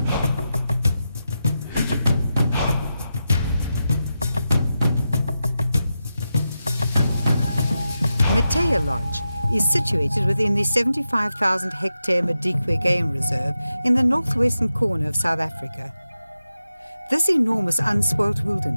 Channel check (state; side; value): inverted; both; correlation -0.89